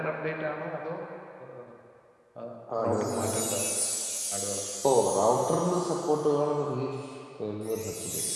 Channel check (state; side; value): identical; both; correlation 1.00